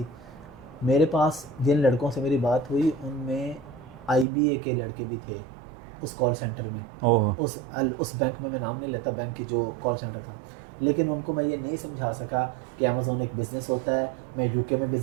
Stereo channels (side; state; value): left; drops out; at 4.2 s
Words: मेरे पास जिन लड़कों से मेरी बात हुई उनमें IBA के लड़के भी थे उस कॉल सेंटर में, उस बैंक में, मैं नाम नहीं लेता बैंक की जो कॉल सेंटर था, लेकिन उनको मैं ये नहीं समझा सका कि अमेज़ोन एक बिज़नेस होता है। मैं यूके में